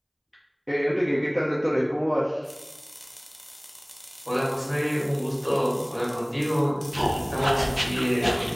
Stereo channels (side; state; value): both; identical; correlation 1.00